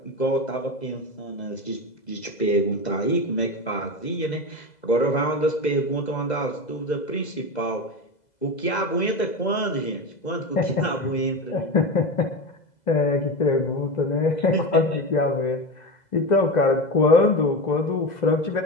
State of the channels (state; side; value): late; right; 2.0 ms